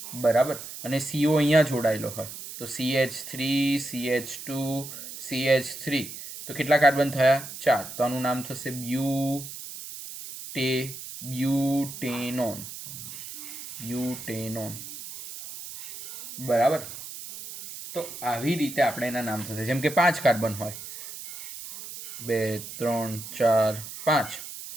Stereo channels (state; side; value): noise; right; hiss, 11 dB below the sound